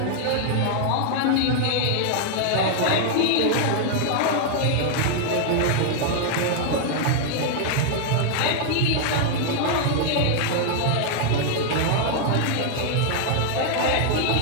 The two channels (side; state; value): both; different; correlation 0.00